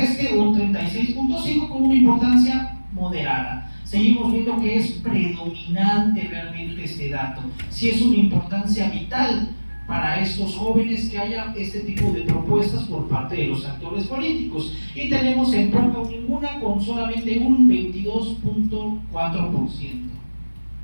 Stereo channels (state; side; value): inverted; both; correlation -1.00